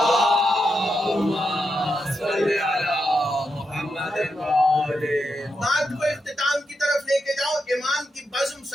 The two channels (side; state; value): both; normal; correlation 0.85